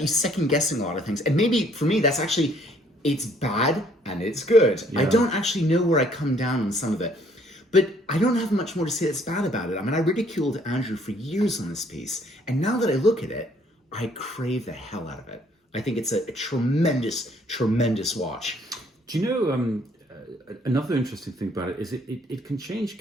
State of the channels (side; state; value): both; normal; correlation 0.63